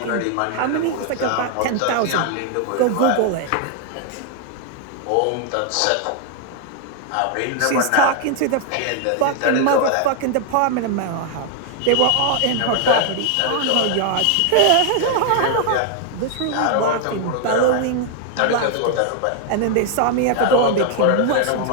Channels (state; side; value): different; both; correlation 0.00